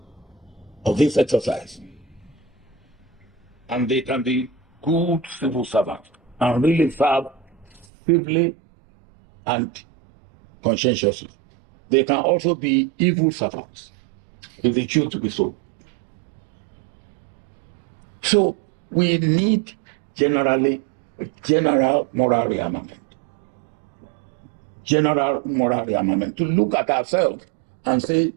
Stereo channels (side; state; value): left; drops out; at 7.9 s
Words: of this exercise. And they can be good civil servants and really serve civilly and conscientiously. They can also be evil servants if they choose to be so. So we need general moral rearmament. General moral rearmament to look at ourselves and say,